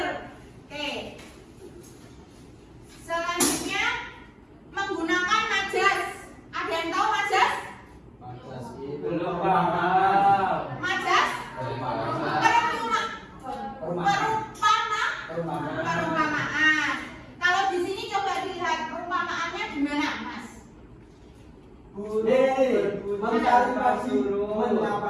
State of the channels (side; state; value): both; identical; correlation 1.00